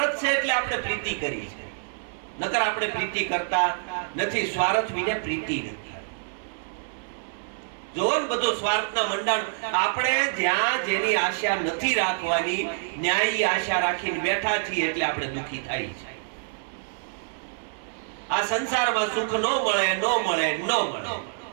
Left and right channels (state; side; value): silent; left; 61 dB below the other